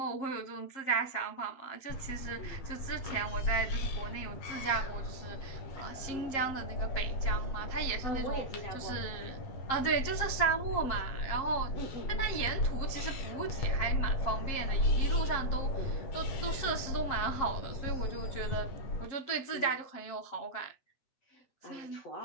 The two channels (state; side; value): late; right; 7.4 ms